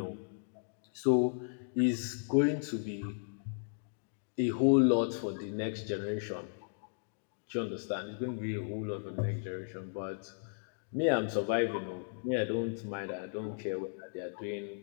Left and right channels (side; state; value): right; silent; digital silence